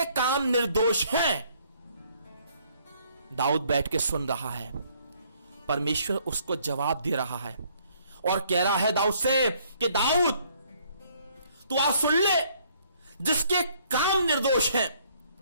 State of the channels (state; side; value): inverted; both; correlation -0.65